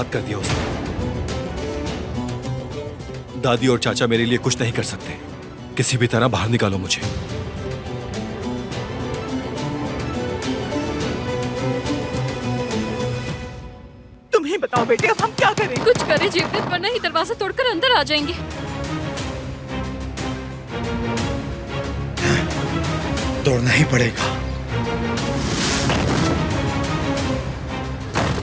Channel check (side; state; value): both; identical; correlation 1.00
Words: कर दिया उसने। दादी और चाचा मेरे लिए कुछ नहीं कर सकते। किसी भी तरह बाहर निकालो मुझे। तुम ही बताओ बेटे, अब हम क्या करें? कुछ करें जेवदत, वरना ही दरवाजा तोड़कर अंदर आ जाएंगे। तोड़ना ही पड़ेगा।